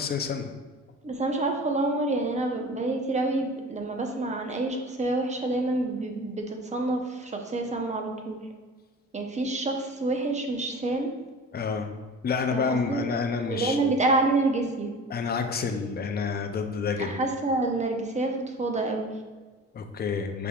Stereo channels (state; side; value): normal; both; correlation 0.38